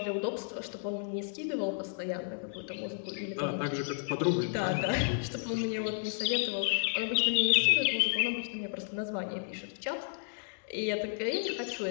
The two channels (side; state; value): right; silent; digital silence